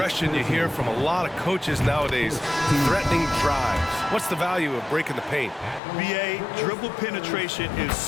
you hear from a lot of coaches nowadays, threatening drives. What's the value of breaking the paint? B.A., dribble penetration is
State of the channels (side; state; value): right; drops out; at 5.8 s